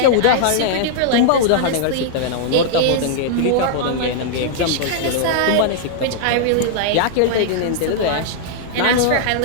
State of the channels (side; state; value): both; different; correlation -0.01